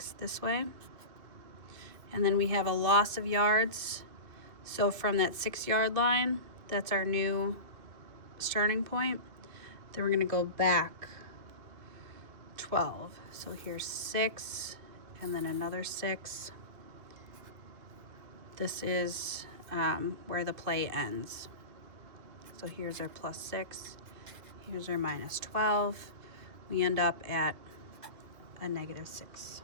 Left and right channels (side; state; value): left; late; 2.5 ms